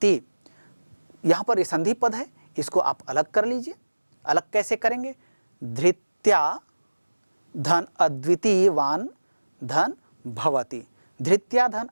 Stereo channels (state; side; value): inverted; both; correlation -1.00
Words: यहाँ पर ये संधि पद है, इसको आप अलग कर लीजिए। अलग कैसे करेंगे? धृत्या धन अद्वितीयवान धन भवति, धृत्या धन